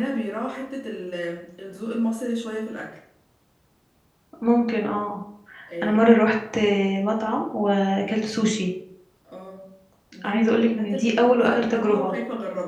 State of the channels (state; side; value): identical; both; correlation 1.00